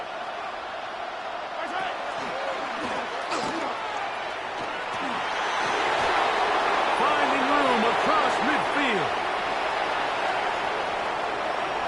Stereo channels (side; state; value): both; identical; correlation 1.00